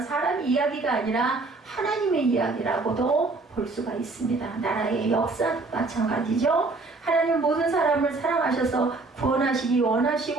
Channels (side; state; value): left; quieter; 3.5 dB